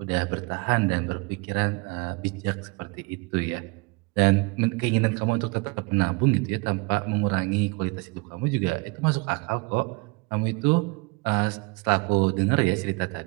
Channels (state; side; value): quieter; left; 28.1 dB